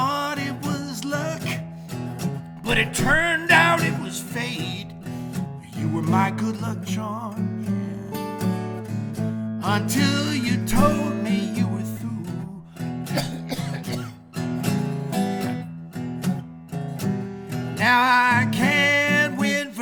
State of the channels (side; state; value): both; identical; correlation 1.00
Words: it was luck, but it turned out it was fate. You were my good luck charm, yeah. Until you told me you were through. Now I can't win